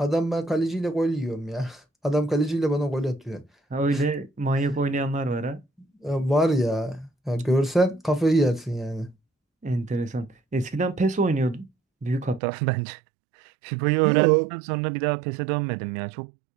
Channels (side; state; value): left; drops out; at 12.4 s